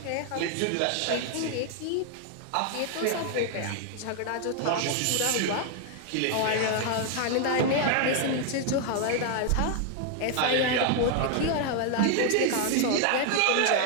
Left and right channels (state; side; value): different; both; correlation 0.00